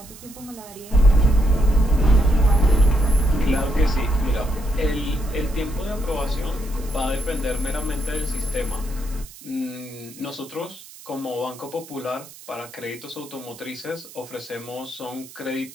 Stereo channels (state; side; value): noise; right; hiss, 19 dB below the sound